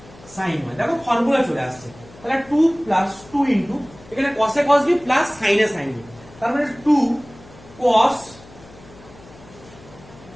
sin y, দেখো ফর্মুলা চলে আসছে। তাহলে 2 প্লাস 2 ইনটু এখানে cos a cos b plus sin a sin b, তার মানে 2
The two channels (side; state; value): left; noise; hum, 22 dB below the sound